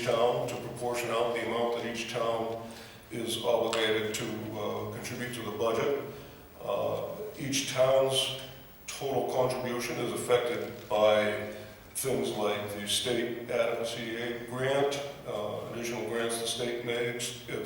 town to proportion out the amount that each town is obligated to contribute to the budget. Each town's total contribution is affected by things like the state adequacy aid grant, additional grants the state makes.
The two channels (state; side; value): identical; both; correlation 1.00